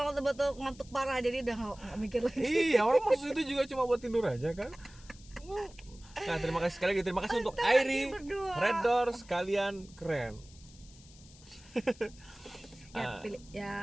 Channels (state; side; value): noise; left; hiss, 23 dB below the sound